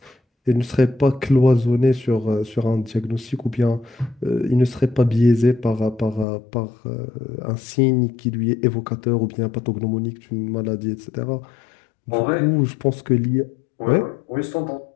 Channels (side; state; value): right; drops out; at 6.2 s